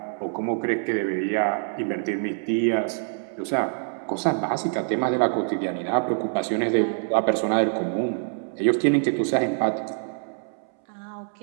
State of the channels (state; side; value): silent; left; 62 dB below the other